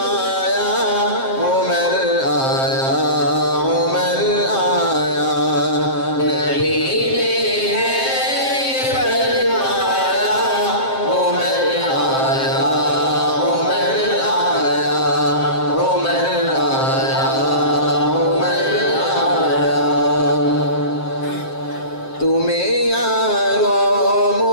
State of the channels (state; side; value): late; right; 7.6 ms